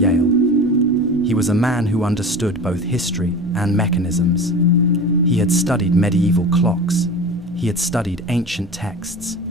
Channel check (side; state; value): both; normal; correlation 0.34